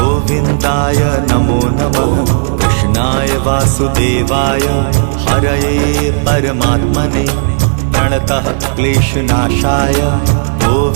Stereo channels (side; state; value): left; silent; digital silence